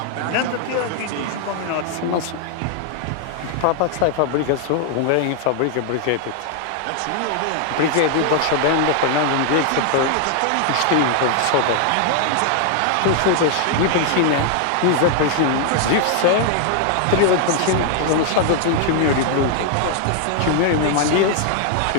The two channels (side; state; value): both; different; correlation 0.00